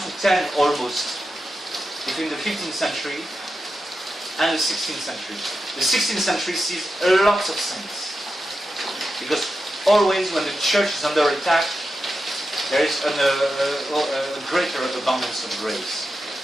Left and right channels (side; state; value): both; normal; correlation 0.89